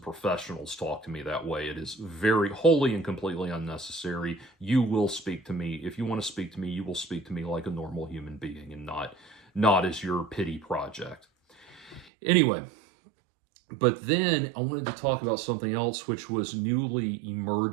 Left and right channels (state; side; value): drops out; left; at 12.1 s